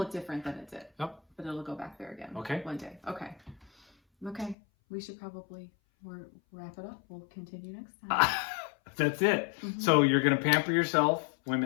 different than it did. Yep. But it'll go back there again. Okay. One day. Okay. We should probably wrap it up. We'll continue next time. That's it. Mhm. So you're going to pamper yourself,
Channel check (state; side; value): drops out; right; at 4.5 s